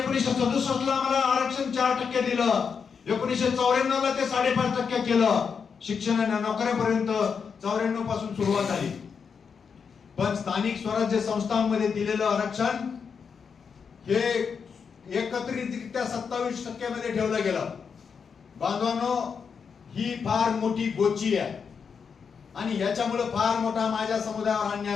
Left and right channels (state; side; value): quieter; right; 6.2 dB